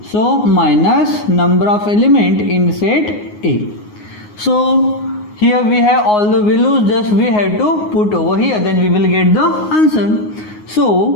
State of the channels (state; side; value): late; right; 9.5 ms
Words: So minus number of element in set A. So here we have all the values, just we have to put over here, then we will get the answer.